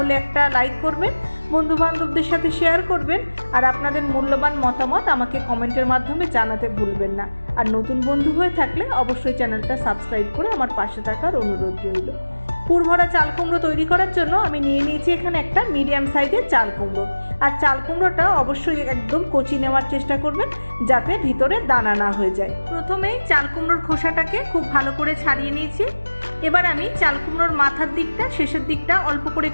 একটা লাইক করবেন, বন্ধু বান্ধবদের সাথে শেয়ার করবেন, আর আপনাদের মূল্যবান মতামত আমাকে কমেন্টের মাধ্যমে জানাতে ভুলবেন না। আর নতুন বন্ধু হয়ে থাকলে অবশ্যই চ্যানেলটা সাবস্ক্রাইব করে আমার পাশে থাকার অনুরোধ রইল। পুর ভরা চাল কুমড়ো তৈরি করার জন্য আমি নিয়ে নিয়েছি এখানে একটা মিডিয়াম সাইজের চাল কুমড়ো। আর চাল কুমড়োটা অবশ্যই একদম কচি নেওয়ার চেষ্টা করবেন, যাতে ভিতরে দানা না হয়ে যায়। প্রথমেই চাল কুমড়োর খোসাটাকে খুব ভালো করে ছাড়িয়ে নিয়েছি। এবার আমি চাল কুমড়োর মাথার দিকটা, শেষের দিকটা অল্প করে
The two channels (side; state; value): both; inverted; correlation -1.00